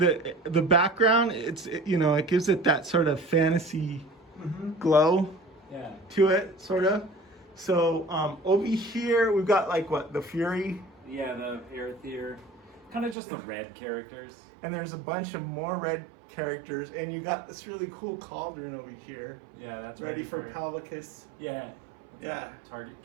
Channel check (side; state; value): left; drops out; at 13.2 s